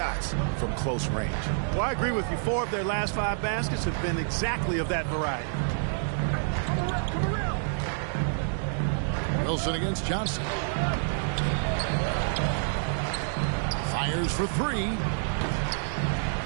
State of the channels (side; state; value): left; silent; digital silence